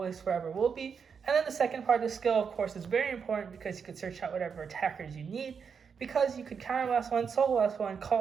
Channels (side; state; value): left; quieter; 6.3 dB